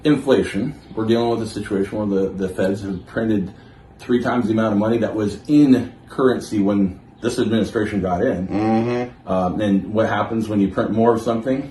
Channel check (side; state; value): both; identical; correlation 1.00